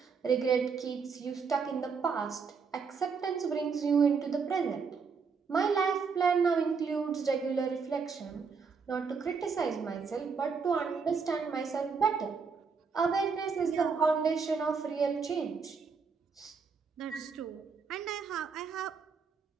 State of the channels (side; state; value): left; quieter; 5.5 dB